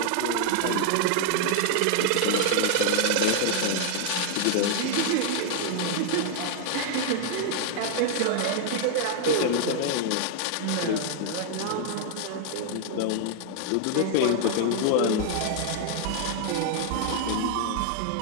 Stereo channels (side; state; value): both; different; correlation 0.00